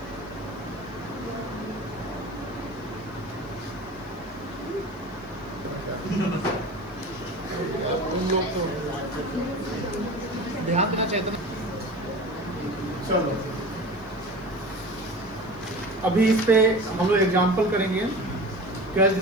ध्यान देना चाहिए था। चलो अभी इस पे हम लोग एग्जाम्पल करेंगे, कैश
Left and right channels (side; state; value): left; noise; hiss, 29 dB below the sound